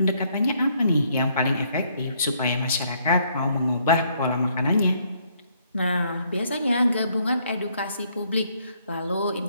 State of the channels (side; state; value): both; inverted; correlation -0.69